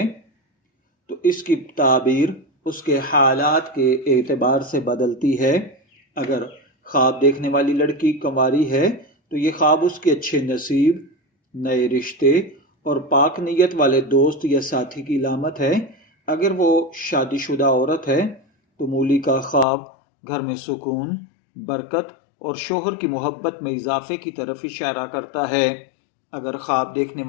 تو اس کی تعبیر اس کے حالات کے اعتبار سے بدلتی ہے۔ اگر خواب دیکھنے والی لڑکی کنواری ہے تو یہ خواب اس کے اچھے نصیب، نئے رشتے اور پاک نیت والے دوست یا ساتھی کی علامت ہے۔ اگر وہ شادی شدہ عورت ہے تو مولی کا خواب گھر میں سکون، برکت اور شوہر کی محبت میں اضافے کی طرف اشارہ کرتا ہے۔ اگر خواب دیکھنے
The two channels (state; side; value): drops out; right; at 19.7 s